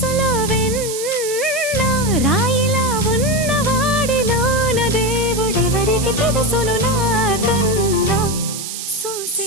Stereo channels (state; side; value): noise; right; hiss, 7 dB below the sound